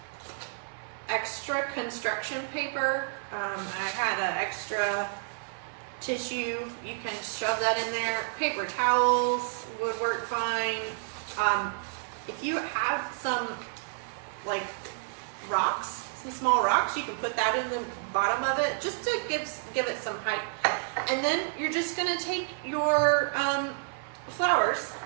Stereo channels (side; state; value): left; silent; 58 dB below the other